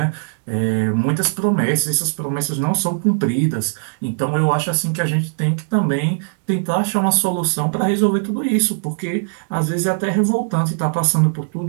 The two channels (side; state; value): left; silent; digital silence